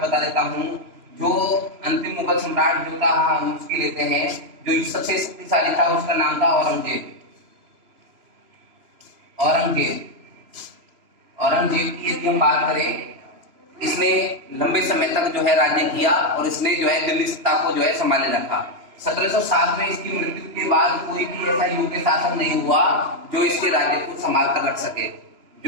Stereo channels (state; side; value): late; left; 3.0 ms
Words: बता देता हूँ जो अंतिम मुगल सम्राट जो था हम उसकी लेते हैं। जो सबसे शक्तिशाली था उसका नाम था औरंगजेब। औरंगजेब की यदि हम बात करें, इसने लंबे समय तक जो है राज्य किया और इसने जो है दिल्ली सत्ता को जो है संभाले रखा। 1707 में इसकी मृत्यु के बाद कोई भी ऐसा योग्य शासक नहीं हुआ जो इसके राज्य को संभाल कर रख सके,